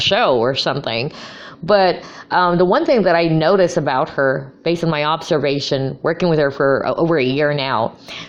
show or something. But the one thing that I notice about her, based on my observation, working with her for over a year now,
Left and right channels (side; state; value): both; identical; correlation 1.00